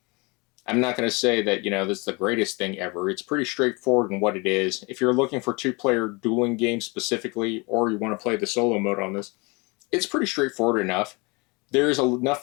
I'm not going to say that, this is the greatest thing ever. It's pretty straightforward in what it is. If you're looking for 2-player dueling games specifically, or you want to play the solo mode on this, it's pretty straightforward enough. There's enough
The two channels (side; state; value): right; quieter; 27.9 dB